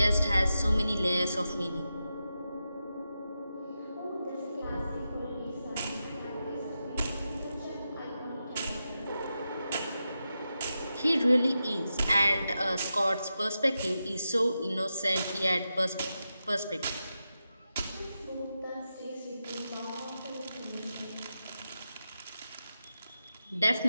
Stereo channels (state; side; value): inverted; both; correlation -0.89